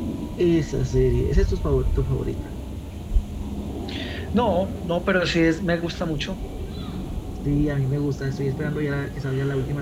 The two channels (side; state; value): both; identical; correlation 1.00